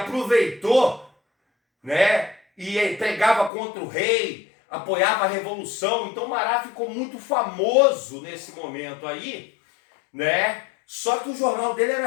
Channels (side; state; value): right; drops out; at 3.5 s